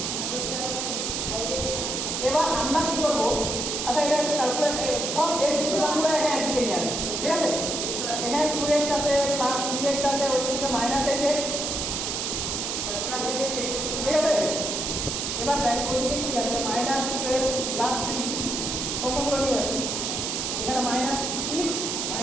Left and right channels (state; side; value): noise; right; hiss, 2 dB below the sound